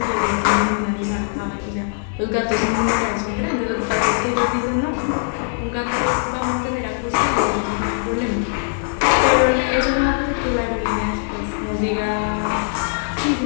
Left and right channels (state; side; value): silent; right; digital silence